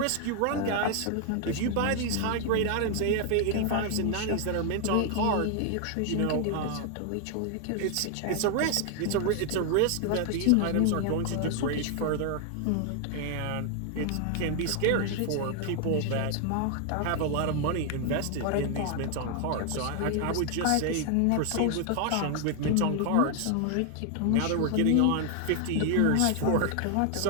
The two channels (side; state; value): both; different; correlation 0.00